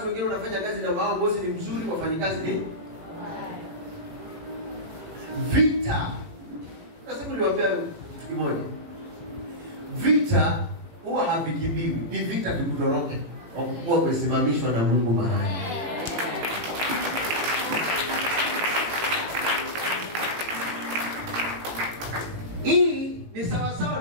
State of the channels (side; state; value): left; late; 18 ms